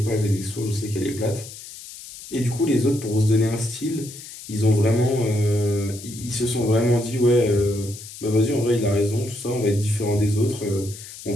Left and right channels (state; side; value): noise; left; hiss, 14 dB below the sound